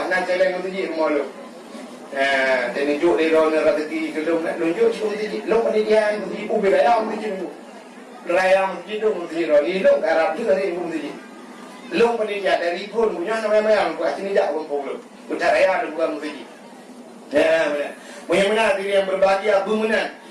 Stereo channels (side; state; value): both; identical; correlation 1.00